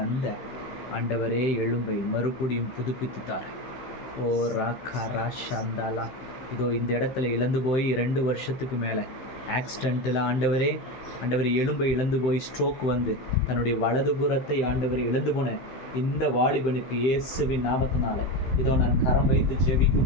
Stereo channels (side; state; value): right; late; 15 ms